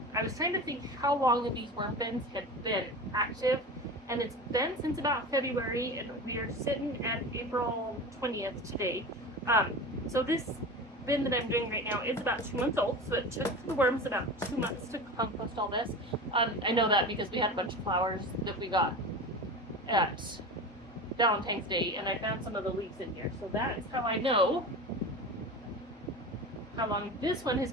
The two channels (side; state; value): both; normal; correlation 0.30